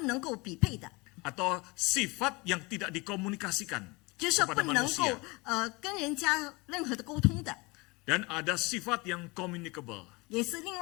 够匹配的， atau sifat yang tidak dikomunikasikan 就是说 kepada 不能够 manusia. 跟人家任何的沟通的， Dan ada sifat yang communicable 也是另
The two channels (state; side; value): quieter; right; 25.7 dB